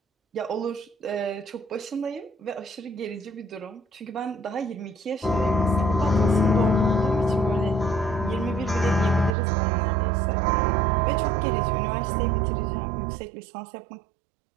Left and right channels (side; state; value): left; drops out; at 9.3 s